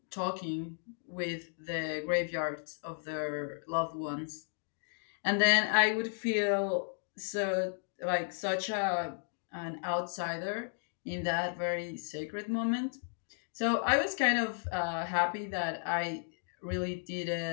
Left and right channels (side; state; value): right; silent; digital silence